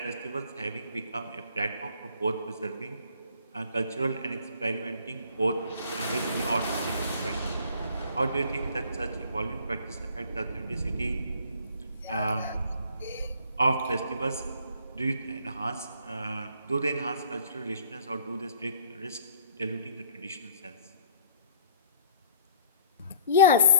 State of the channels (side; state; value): both; inverted; correlation -0.54